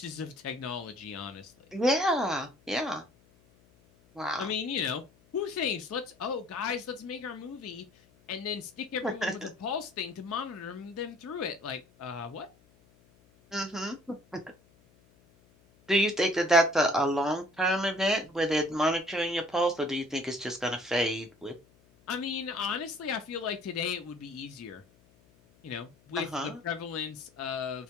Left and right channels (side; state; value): left; noise; hum, 30 dB below the sound